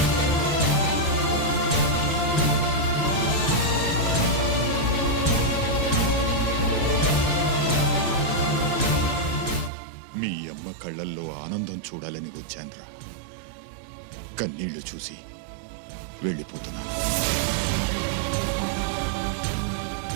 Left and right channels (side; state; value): left; drops out; at 9.7 s